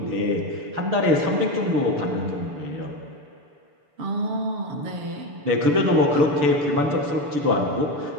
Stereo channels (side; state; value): left; late; 6.8 ms